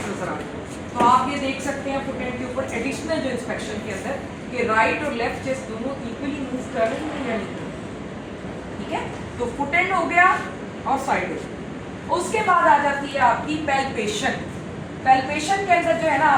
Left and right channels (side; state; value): both; identical; correlation 1.00